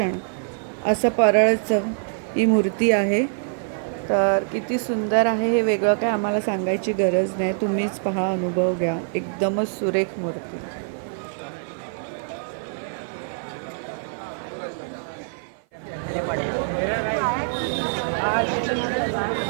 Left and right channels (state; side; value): silent; left; 55 dB below the other